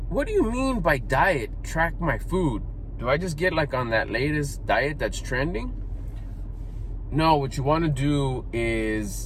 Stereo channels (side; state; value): both; identical; correlation 1.00